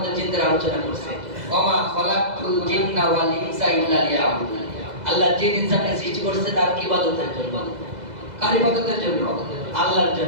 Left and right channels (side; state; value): left; late; 2.0 ms